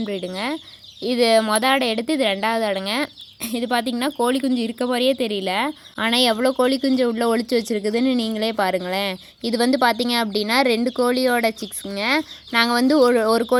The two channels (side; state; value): both; identical; correlation 1.00